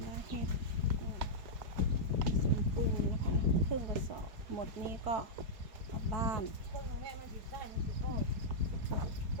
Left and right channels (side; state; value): left; late; 4.7 ms